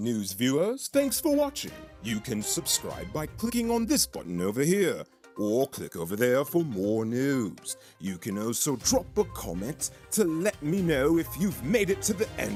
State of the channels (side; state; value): both; identical; correlation 1.00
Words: viewers. Thanks for watching. You can subscribe by clicking on this button over here, or click over there for more news. You can also drop a comment to let me know if you've made it to the